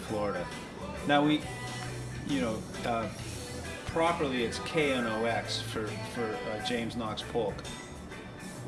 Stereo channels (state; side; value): identical; both; correlation 1.00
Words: Now properly it's KNOX for James Knox Polk.